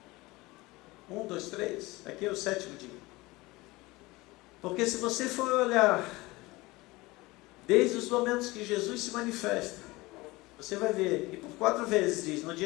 1, 2, 3. Aqui é o 7º dia. Porque se você for olhar, desde os momentos que Jesus se manifesta, você vai ver, e por 4 vezes diz, no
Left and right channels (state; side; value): quieter; right; 21.4 dB